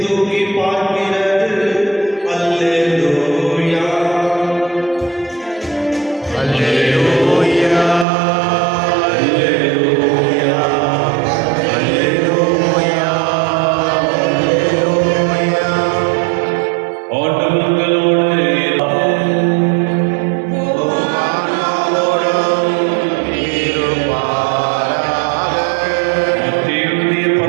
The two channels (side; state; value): left; drops out; at 8.1 s